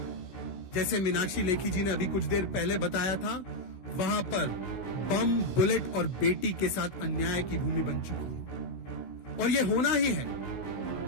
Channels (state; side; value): late; right; 16 ms